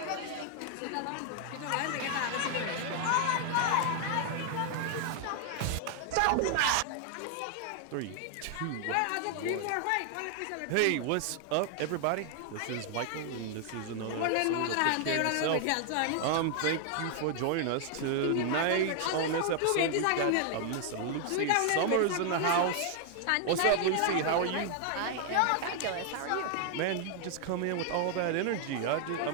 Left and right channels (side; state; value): both; different; correlation 0.00